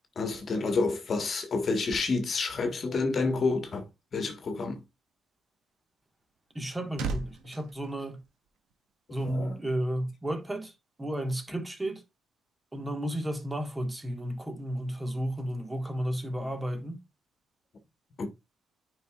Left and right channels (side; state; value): both; normal; correlation 0.86